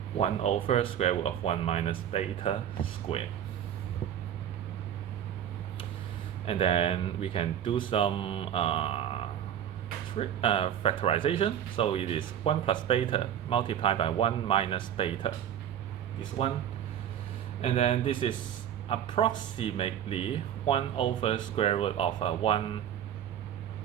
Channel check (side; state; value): left; quieter; 9.9 dB